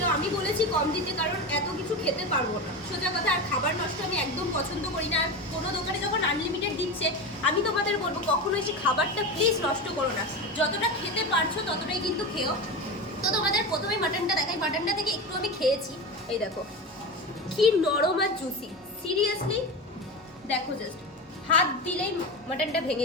আমি বলেছি কম দিতে, কারণ এত কিছু খেতে পারবো না, সোজা কথা। আর খাবার নষ্ট আমি একদম পছন্দ করি না। আর কোনো দোকানে যখন আনলিমিটেড দিচ্ছে, আমি তোমাদের বলবো কখনো এসে খাবারটা প্লিজ নষ্ট করো না, যতটা খেতে পারছো ততটাই কিন্তু খেও। তো তোমাদের প্রথমে মাটনটা দেখাই, মাটনটা থেকে একটু আমি খেয়েছি, এই দেখো কি নরম আর জুসি, সিরিয়াসলি দেখো, জাস্ট হাত দিলেই মাটনটা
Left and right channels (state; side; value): normal; both; correlation 0.23